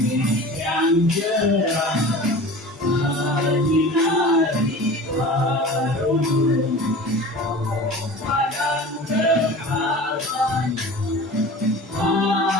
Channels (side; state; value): both; normal; correlation 0.37